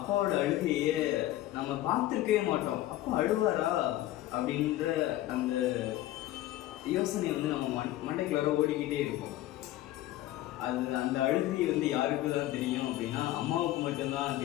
அழுகையே நம்ம பார்த்துருக்கவே மாட்டோம். அப்பா அழுவாரா அப்படின்ற அந்த யோசனை நம்ம மண்டைக்குள்ளார ஓடிக்கிட்டே இருக்கும். அந்த அழுகை யாருக்கு தான் தெரியும் அப்படின்னா அம்மாவுக்கு மட்டும்தான்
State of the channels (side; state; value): right; quieter; 15.1 dB